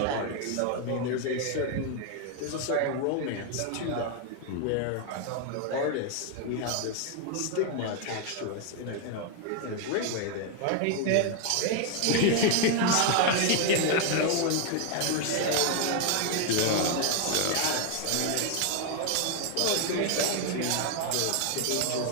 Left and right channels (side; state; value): both; different; correlation 0.00